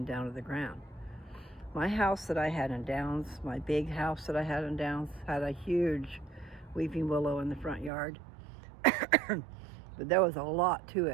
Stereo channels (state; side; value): drops out; left; at 7.9 s